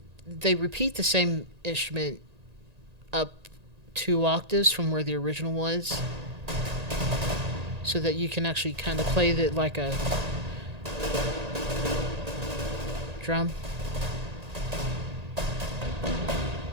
they repeat the same instrument up 2 octaves from where the original was, so that you can actually kind of play it like a drum.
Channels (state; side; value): late; left; 1.8 ms